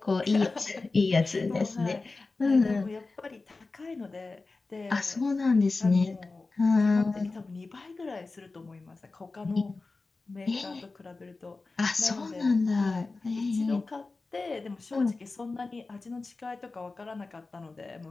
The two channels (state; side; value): quieter; right; 3.7 dB